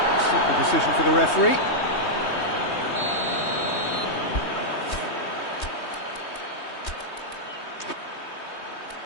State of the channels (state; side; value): late; right; 3.2 ms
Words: Simple decision for the referee.